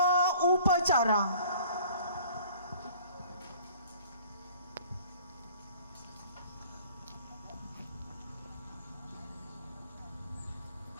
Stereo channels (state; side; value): inverted; both; correlation -0.49